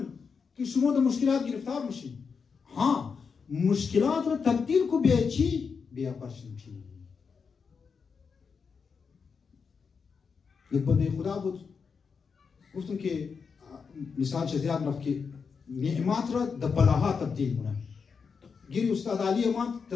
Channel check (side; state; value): right; quieter; 5.7 dB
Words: که شما در مشکلات گرفتار میشید. ها مشکلات را تبدیل کو به چی؟ به اپرچونیتی. یک بنده خدا بود، گفتم که مثال چه زیاد رفت که نعمت را در بلاها تبدیل کنه. گیری استاد علی امان